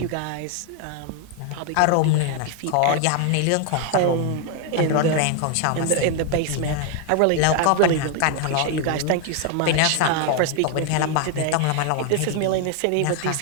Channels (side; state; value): both; different; correlation 0.01